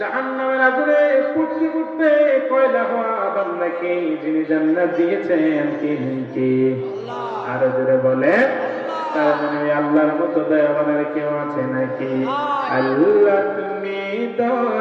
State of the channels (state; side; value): identical; both; correlation 1.00